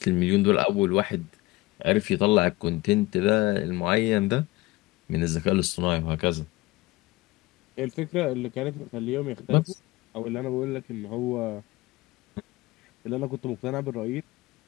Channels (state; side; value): quieter; right; 20.5 dB